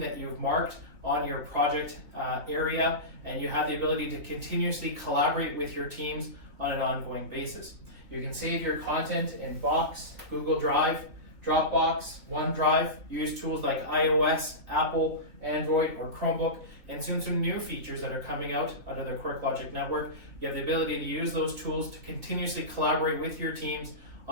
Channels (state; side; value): late; left; 2.5 ms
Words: that you've marked on your project area, and you have the ability to continuously collaborate with your teams on an ongoing basis. You can save your content in Box, Google Drive, Dropbox, OneDrive, use tools like iOS, Apple, Android, or Chromebook, and soon some new features that are coming out of the QuirkLogic network. You have the ability to use those tools to continuously collaborate with your teams